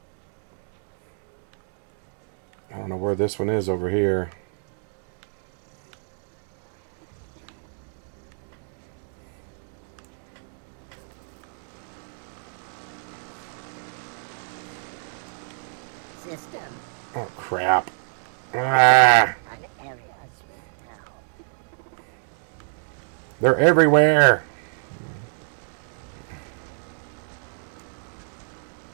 I don't know where this one is over here. System. Oh, crap. Ah. They're everywhere.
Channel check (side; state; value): left; silent; digital silence